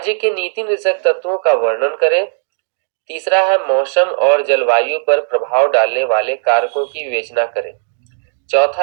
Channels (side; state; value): left; silent; digital silence